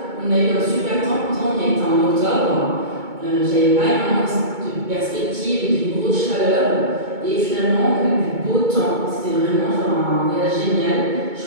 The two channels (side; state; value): left; late; 2.2 ms